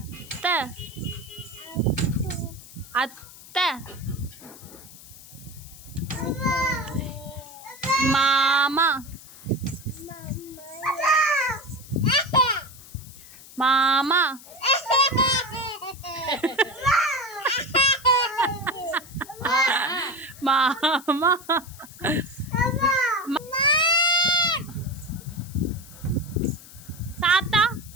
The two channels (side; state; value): left; noise; hiss, 19 dB below the sound